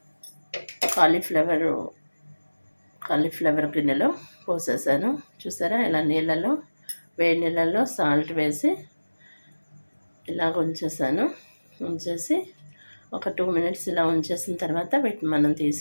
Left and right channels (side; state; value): both; inverted; correlation -1.00